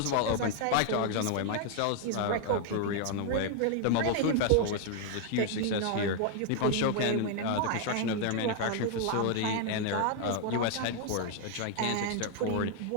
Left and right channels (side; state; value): both; different; correlation 0.00